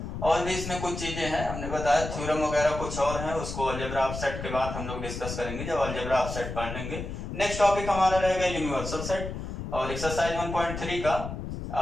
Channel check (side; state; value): left; noise; rumble, 7 dB below the sound